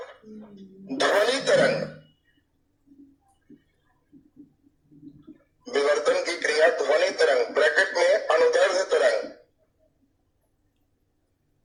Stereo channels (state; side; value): identical; both; correlation 1.00